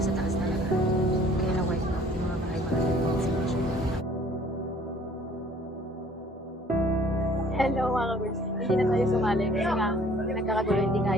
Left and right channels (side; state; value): both; normal; correlation 0.55